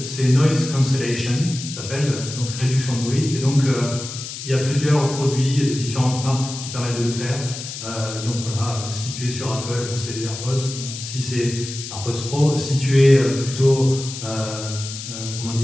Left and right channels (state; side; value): noise; left; hiss, 9 dB below the sound